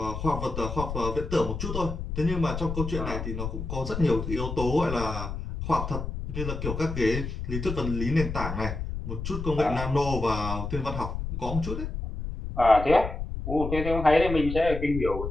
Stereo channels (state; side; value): noise; left; rumble, 5 dB below the sound